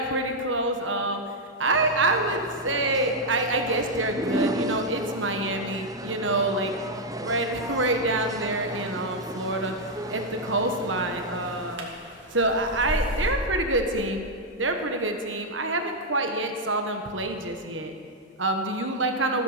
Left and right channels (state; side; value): normal; both; correlation -0.01